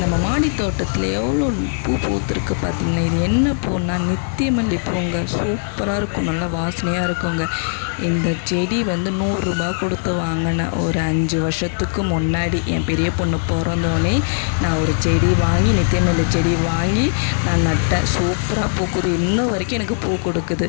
மாடி தோட்டத்தில் எவ்வளோ பூ பூத்துருக்கு பார்த்தீங்களா? இது என்ன பூன்னா நித்தியமல்லி பூங்க. சூப்பராக இருக்கும், நல்லா வாசனையாக இருக்குங்க. இந்த செடி வந்து 100 ரூபா கொடுத்து வாங்கினேன். ஒரு 5 வருஷத்துக்கு முன்னாடி என் பெரிய பொண்ணு பிறந்தோடனே நான் ஒரு செடி வாங்கி, நித்தியமல்லி செடி வாங்கி நான் நட்டேன். சூப்பராக பூக்குது, இன்ன வரைக்கும் எனக்கு பூ கொடுக்குது.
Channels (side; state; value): right; silent; digital silence